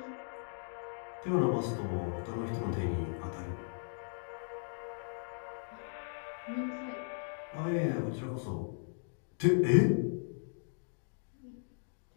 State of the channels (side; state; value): right; silent; digital silence